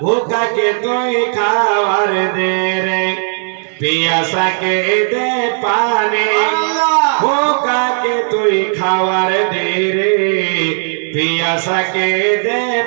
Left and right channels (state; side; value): silent; left; digital silence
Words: ভুকাকে তুই খাওয়ার দে রে, পিয়াসাকে দে পানি। ভুকাকে তুই খাওয়ার দে রে, पियासा के दे